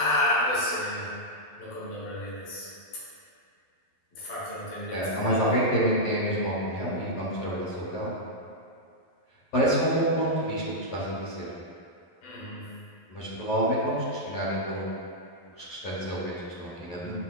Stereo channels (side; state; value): right; late; 11 ms